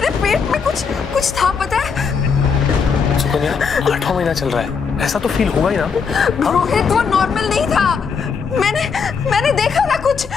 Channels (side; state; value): right; quieter; 5.8 dB